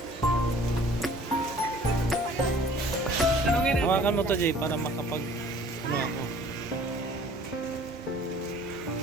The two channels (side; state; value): both; normal; correlation 0.52